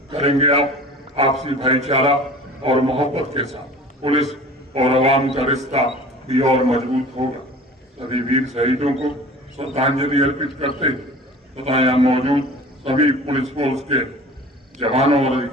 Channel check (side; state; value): both; normal; correlation 0.42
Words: करेंगे। आप आपसी भाईचारा और मोहब्बत के साथ पुलिस और आवाम का रिश्ता भी और मजबूत होगा। सभी वीर शहीदों को श्रद्धांजलि अर्पित करते तथा यहाँ मौजूद सभी पुलिस फोर्स के जवानों और